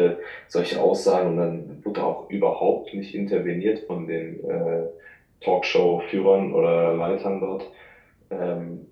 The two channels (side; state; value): both; identical; correlation 1.00